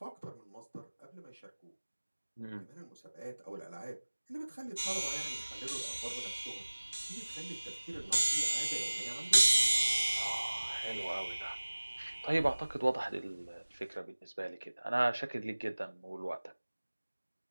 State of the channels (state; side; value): inverted; both; correlation -1.00